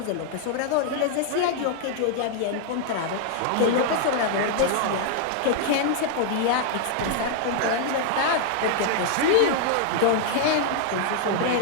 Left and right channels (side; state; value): both; different; correlation -0.01